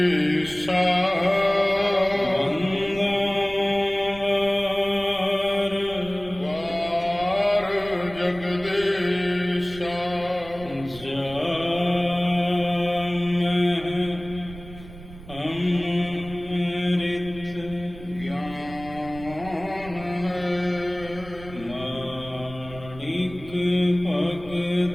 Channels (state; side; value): noise; right; rumble, 16 dB below the sound